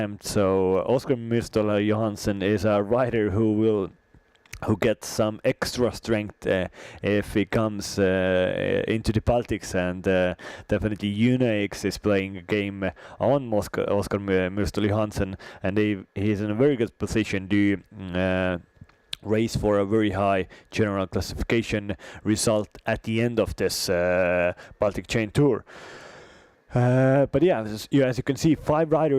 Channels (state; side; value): identical; both; correlation 1.00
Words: So Oskar Myrstel Johansson is a rider who gets some extra strength if he comes into the Baltics, and definitely UNAX is playing a game on Oskar Myrstel Johansson, and he is in a very good position to race for a very high general classification result at the end of this Baltic Chain Tour. But yeah, as you can see, 5